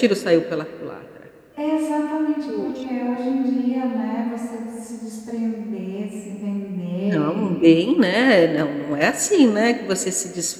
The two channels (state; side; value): identical; both; correlation 1.00